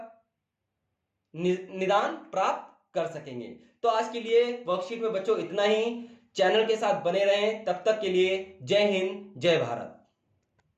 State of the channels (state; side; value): identical; both; correlation 1.00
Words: निदान प्राप्त कर सकेंगे। तो आज के लिए वर्कशीट में बच्चों इतना ही। चैनल के साथ बने रहें, तब तक के लिए जय हिंद, जय भारत।